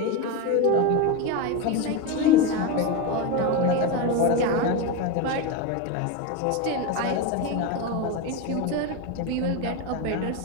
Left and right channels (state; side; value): different; both; correlation 0.05